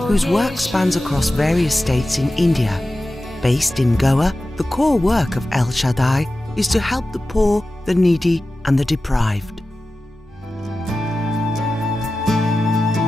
whose work spans across various states in India. Based in Goa, the core work of El Shaddai is to help the poor, the needy and the deprived.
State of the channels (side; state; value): both; normal; correlation 0.94